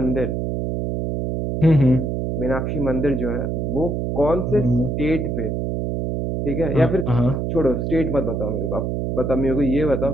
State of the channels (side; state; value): right; noise; hum, 1 dB below the sound